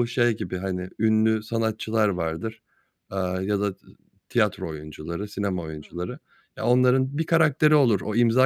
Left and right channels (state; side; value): identical; both; correlation 1.00